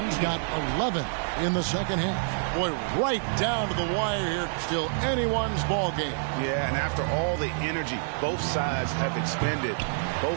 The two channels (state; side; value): silent; left; digital silence